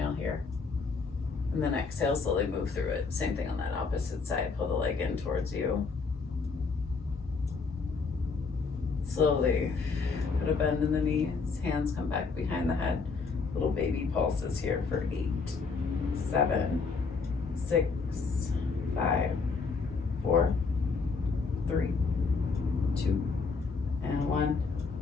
here. And then exhale, slowly move through it. Same thing on that opposite side. Pull the leg in towards you. Slowly put a bend in the knees. Hands come back behind the head. Little baby pulses here for 8, 7, 6, 5, 4, 3, 2, and 1.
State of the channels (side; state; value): right; quieter; 4.7 dB